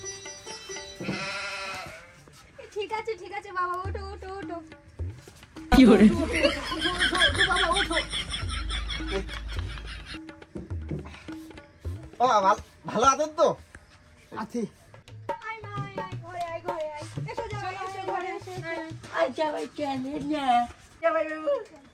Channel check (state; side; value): identical; both; correlation 1.00